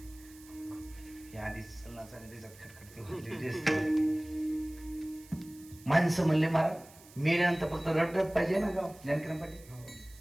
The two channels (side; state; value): right; noise; hiss, 22 dB below the sound